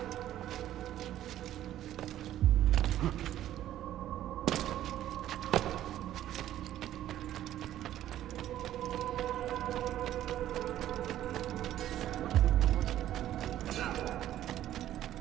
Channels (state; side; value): quieter; left; 12.5 dB